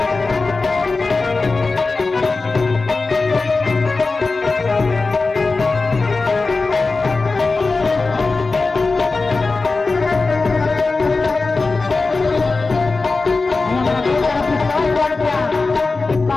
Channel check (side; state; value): right; quieter; 3.8 dB